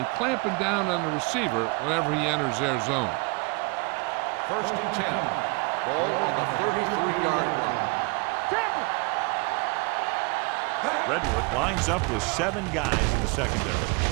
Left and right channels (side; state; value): left; quieter; 29.8 dB